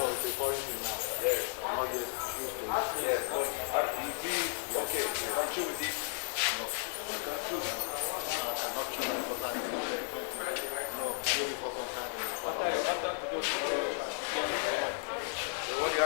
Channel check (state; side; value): silent; right; 55 dB below the other